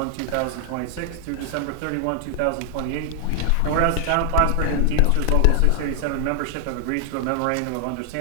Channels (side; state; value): both; different; correlation 0.00